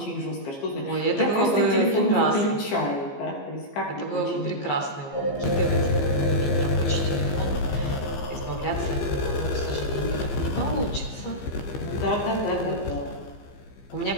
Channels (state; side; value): late; right; 15 ms